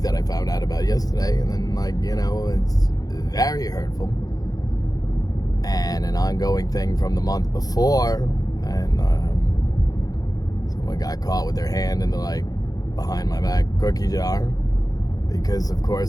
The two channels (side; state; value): right; late; 0.18 ms